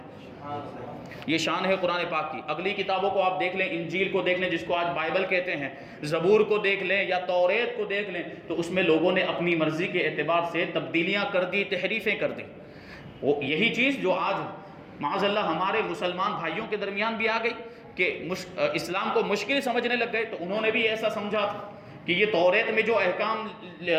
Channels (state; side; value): identical; both; correlation 1.00